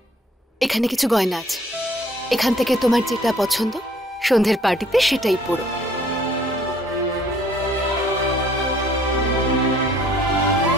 এখানে কিছু গয়না আছে, এখান থেকে তোমার যেটা পছন্দ সন্ধ্যের পার্টিতে সেটাই পরো।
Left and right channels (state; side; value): normal; both; correlation 0.59